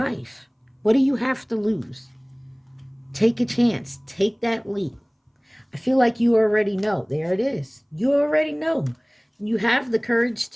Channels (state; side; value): identical; both; correlation 1.00